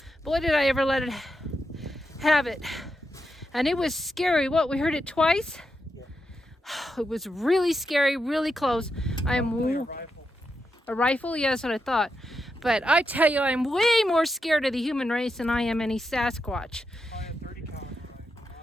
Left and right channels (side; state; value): both; normal; correlation 0.86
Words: Boy, did I ever let it have it. And it was scary. What, we heard it twice? Yeah. It was really scary, really close. I am a rifle. A rifle? Yeah, that's what I thought. But I tell you, I'm way more scared of the human race than I am any Sasquatch. I have 30 caliber